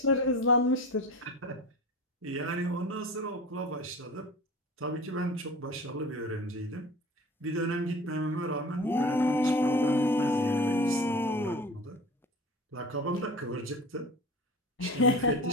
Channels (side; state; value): both; normal; correlation 0.37